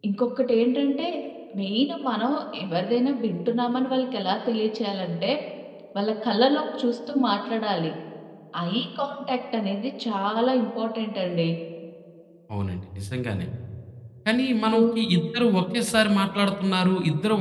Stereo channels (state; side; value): identical; both; correlation 1.00